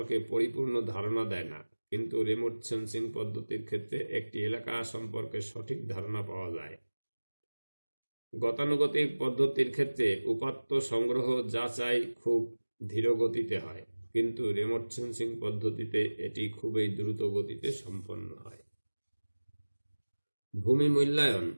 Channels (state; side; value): inverted; both; correlation -1.00